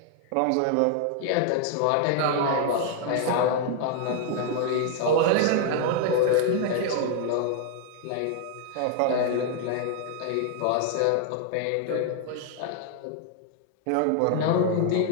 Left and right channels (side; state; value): both; different; correlation 0.00